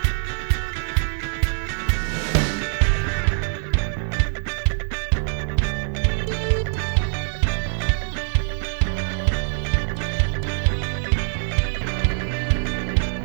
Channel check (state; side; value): silent; left; 61 dB below the other